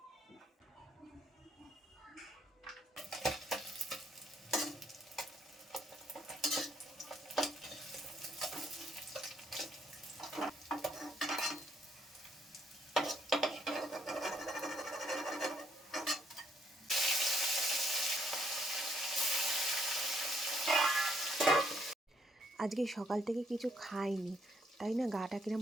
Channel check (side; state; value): both; normal; correlation 0.70